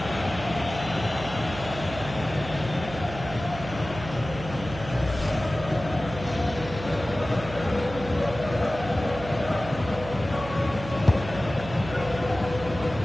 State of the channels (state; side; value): noise; right; hum, 11 dB below the sound